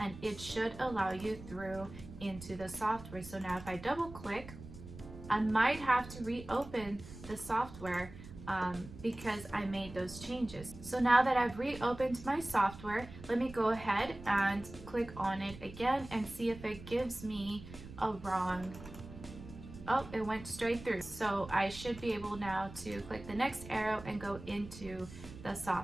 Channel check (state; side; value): noise; right; rumble, 15 dB below the sound